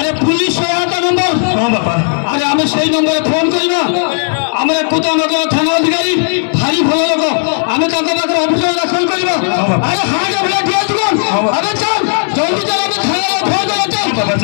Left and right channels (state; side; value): silent; right; 72 dB below the other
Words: पुलिस सहायता नंबर हां बापा अरे हमें सही नंबर फोन करबा हमरे कुतानगर थाना अधिकारी भारी भलो लोग हमें ताका पाकर ऑफिसर दाखल करबा अरे हां जब ले दिया तू अरे चल जल्दी चल हमें थाना फोन कर चल बाबा